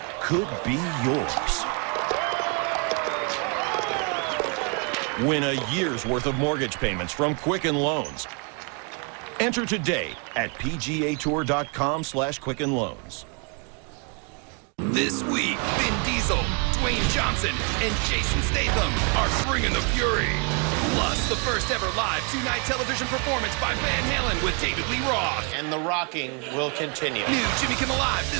could be yours. Win a year's worth of mortgage payments from Quicken Loans. Enter today at pgatour.com/Quicken Loans. This week, Vin Diesel, Dwayne Johnson, and Jason Statham are bringing the fury. Plus, the first ever live two-night television performance by Van Halen with David Lee Roth. And the rocking will continue. New Jimmy Kimmel Live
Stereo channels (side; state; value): left; quieter; 35.7 dB